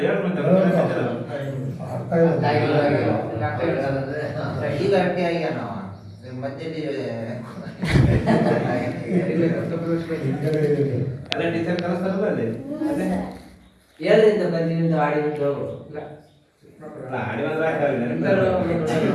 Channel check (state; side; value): identical; both; correlation 1.00